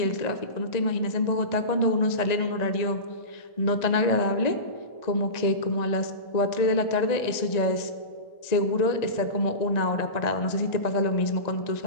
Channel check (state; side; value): late; right; 1.9 ms